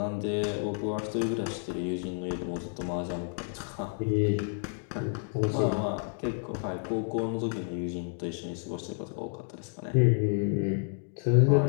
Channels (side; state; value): right; silent; 57 dB below the other